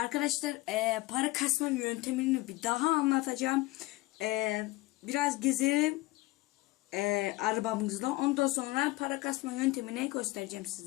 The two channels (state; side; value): quieter; right; 20.3 dB